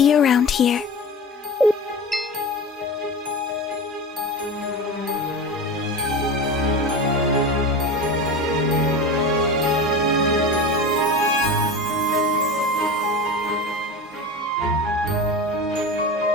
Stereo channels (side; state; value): both; normal; correlation 0.29